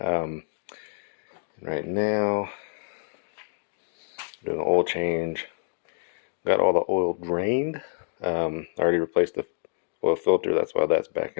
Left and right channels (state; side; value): silent; right; digital silence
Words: now, doing an oil change. Got all the oil drained. I already replaced the oil filter, that's why that's back